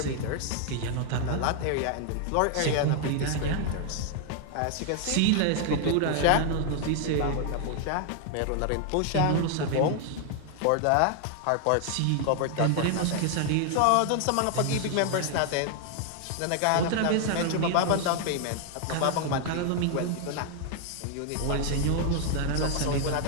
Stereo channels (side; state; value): both; different; correlation 0.00